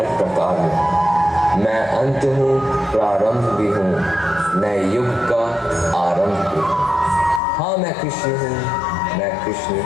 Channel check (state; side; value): drops out; right; at 7.4 s